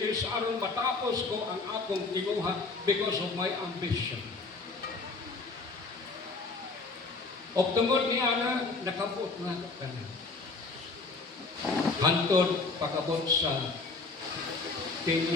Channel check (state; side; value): quieter; right; 3.8 dB